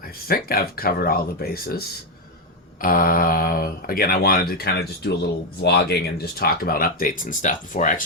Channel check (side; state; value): both; normal; correlation 0.05